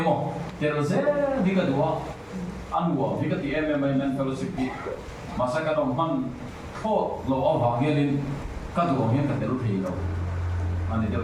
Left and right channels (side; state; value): both; identical; correlation 1.00